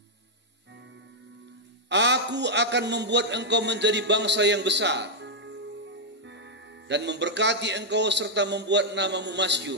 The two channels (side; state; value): both; normal; correlation -0.02